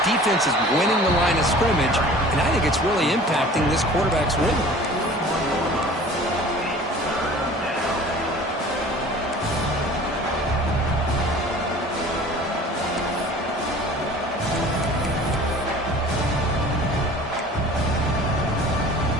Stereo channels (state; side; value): normal; both; correlation 0.45